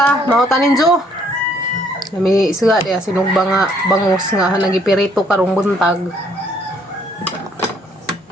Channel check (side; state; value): both; normal; correlation 0.65